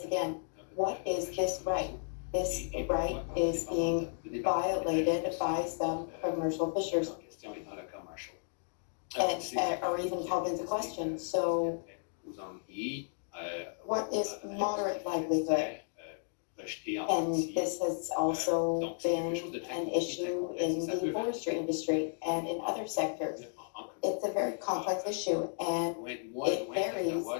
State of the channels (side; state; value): right; silent; digital silence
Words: again. What is this right? This right is being violated by some commercial fishers and are even called into question. So what is moderate livelihood? And this has also been an issue in the forestry industry and in other sectors. It's a very complex issue, and it varies